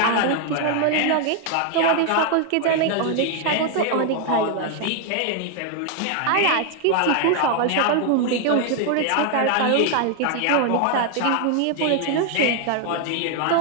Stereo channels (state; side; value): different; both; correlation 0.00